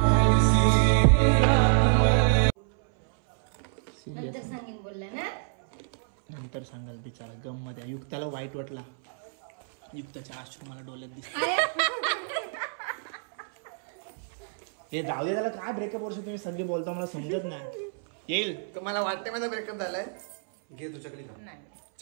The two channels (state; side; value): silent; left; 59 dB below the other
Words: नंतर सांगेन बोलला ना. नंतर सांगाल बिचारा. गम मध्ये युक्ताला वाईट वाटला. युक्ताच्या अश्रू मला डोळ्यात दिसत. हे जाऊ दे त्याला. काय ब्रेकअप वर्ष तुम्ही सगळी बोलता मला समजत नाही. येईल तुम्हाला वाटते माझा ब्रेकअप झालाय. घे तू चकली खा.